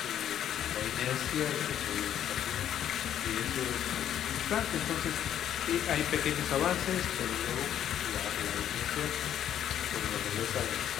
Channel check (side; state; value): right; quieter; 10.3 dB